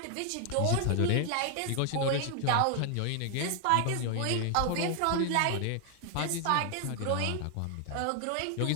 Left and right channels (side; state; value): both; different; correlation 0.00